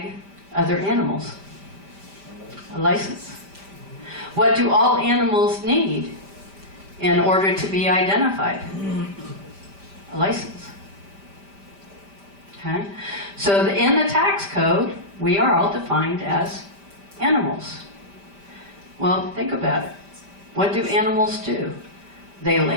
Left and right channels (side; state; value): left; late; 5.1 ms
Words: other animals? A license. What do all animals need in order to be identified? A license. Okay? So in the tax code, we are all defined as animals. Well, think about it. What do animals do? They